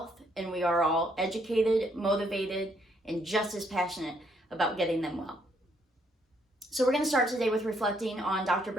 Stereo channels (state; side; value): normal; both; correlation 0.71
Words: and we are all educated, motivated, and just as passionate about getting them well. So we're going to start today with reflecting on Dr.